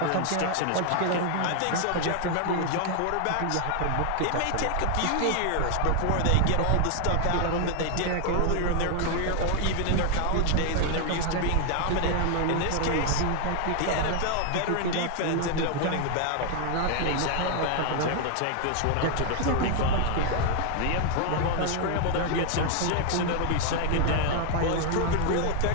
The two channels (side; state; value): both; different; correlation 0.00